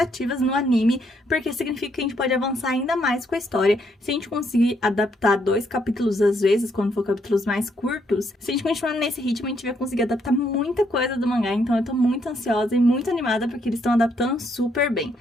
no anime, porque significa que a gente pode avançar ainda mais com a história. Se a gente conseguir adaptar 2 capítulos às vezes, quando for capítulos mais curtos, se a gente continuar nesse ritmo, a gente vai conseguir adaptar muita coisa do mangá. Então, eu tô muito ansiosa e muito animada, porque eles estão adaptando super bem.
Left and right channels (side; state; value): both; normal; correlation 0.73